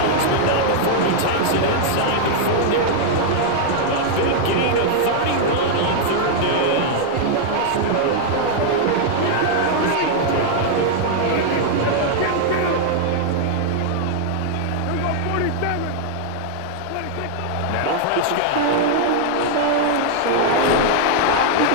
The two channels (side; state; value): both; different; correlation -0.01